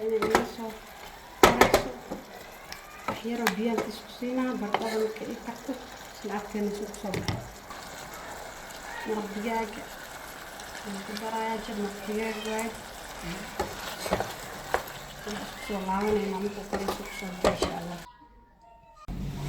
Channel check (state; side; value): identical; both; correlation 1.00